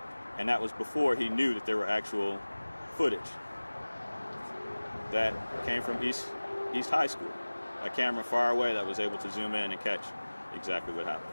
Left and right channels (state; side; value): inverted; both; correlation -1.00